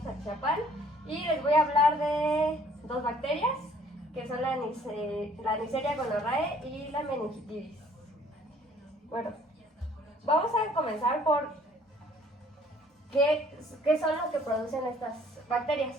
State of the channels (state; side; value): normal; both; correlation 0.58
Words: Atizapán, y les voy a hablar de dos bacterias, que son la Neisseria gonorrhoeae y la meningitis. Bueno, vamos a comenzar por qué son lo que producen estas bacterias.